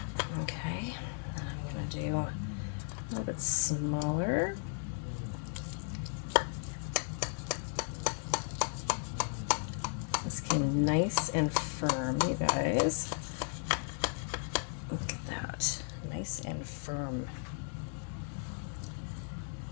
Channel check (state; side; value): silent; right; 54 dB below the other